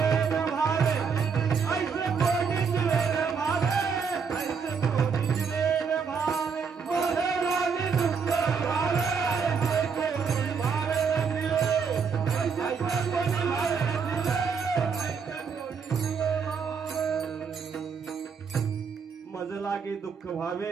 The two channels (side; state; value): left; quieter; 6.0 dB